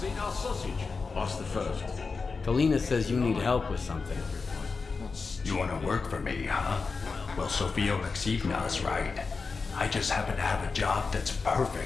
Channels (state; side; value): quieter; right; 4.5 dB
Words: eat our sausage? Ask the first. Kalina says you need help with something. You want to work for me, huh? Well, Sofia Alexeyevna's right. I just happen to have a job that's